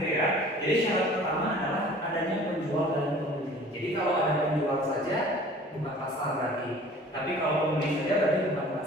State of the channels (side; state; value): both; normal; correlation 0.47